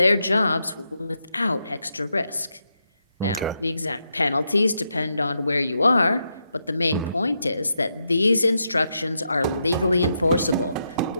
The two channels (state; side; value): inverted; both; correlation -0.83